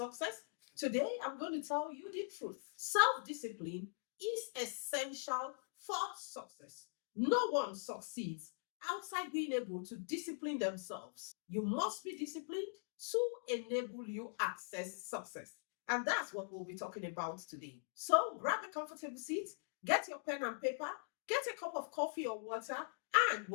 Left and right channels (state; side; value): silent; right; digital silence